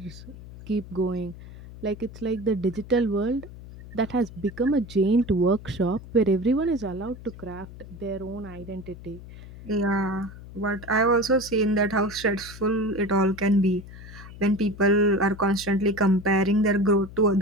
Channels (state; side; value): noise; left; hum, 16 dB below the sound